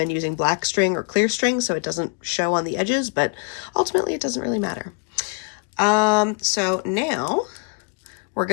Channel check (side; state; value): right; quieter; 35.9 dB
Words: using black string or clear string so it doesn't show on the edges, but ultimately it doesn't really matter. So now we're